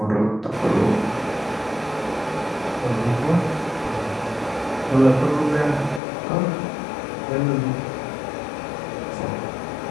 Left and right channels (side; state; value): right; drops out; at 6.0 s